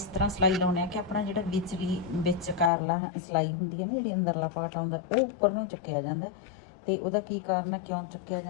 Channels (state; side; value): drops out; right; at 2.7 s